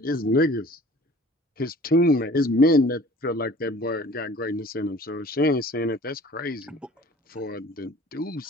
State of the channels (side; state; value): both; normal; correlation 0.48